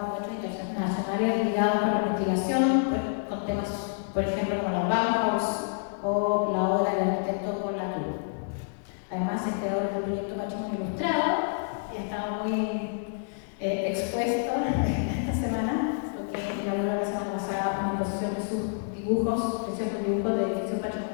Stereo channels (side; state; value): right; silent; digital silence